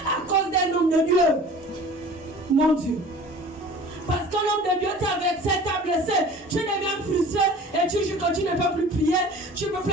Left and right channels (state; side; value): normal; both; correlation 0.43